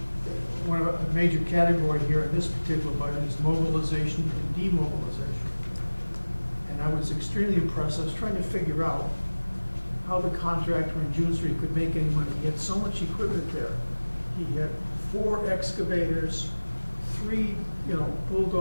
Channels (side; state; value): both; inverted; correlation -1.00